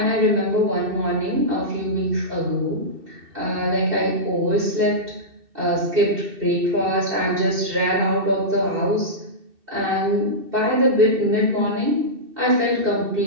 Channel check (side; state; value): left; late; 2.7 ms